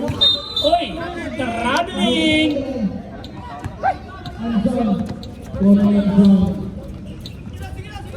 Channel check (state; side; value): identical; both; correlation 1.00